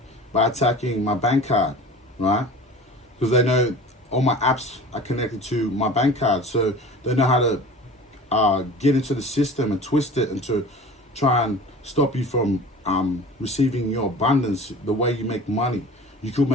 by attacking my bank card, right? Because they know all my apps are connected to my bank card, so they know how to get into the system and twist it and to try and stop you from receiving your abundance, the way you make money. You could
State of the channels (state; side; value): normal; both; correlation 0.40